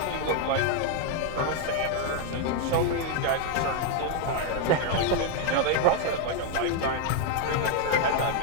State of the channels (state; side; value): different; both; correlation 0.00